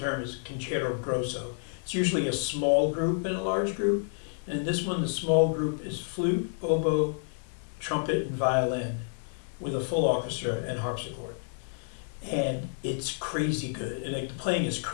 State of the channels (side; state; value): right; silent; digital silence